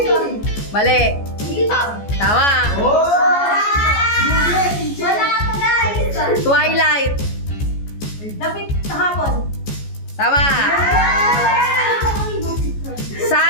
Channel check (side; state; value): right; late; 14 ms